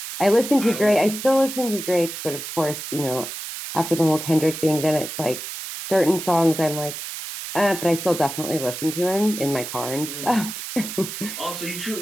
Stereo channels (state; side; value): noise; right; hiss, 8 dB below the sound